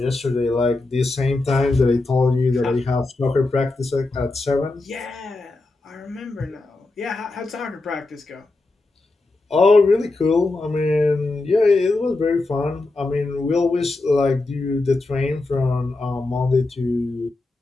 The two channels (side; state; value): right; quieter; 3.1 dB